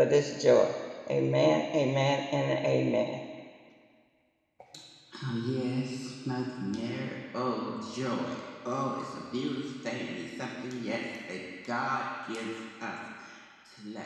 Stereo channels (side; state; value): both; identical; correlation 1.00